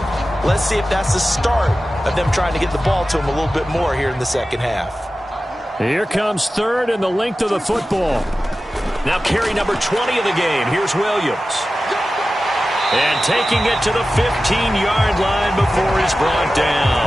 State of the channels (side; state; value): both; normal; correlation 0.94